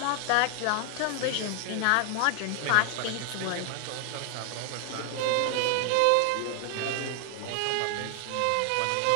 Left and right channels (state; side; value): different; both; correlation 0.00